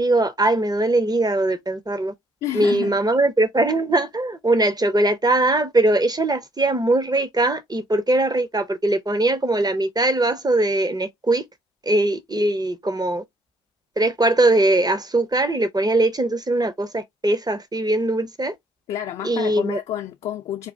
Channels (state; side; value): normal; both; correlation 0.67